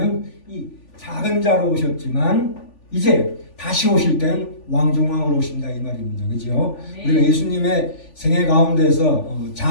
이 작은 자로 오셨지만 이제 다시 오실 때는 왕 중 왕으로 오신다 이 말입니다. 그죠? 네. 우리가 예수님의 생애 가운데서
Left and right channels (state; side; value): late; right; 3.4 ms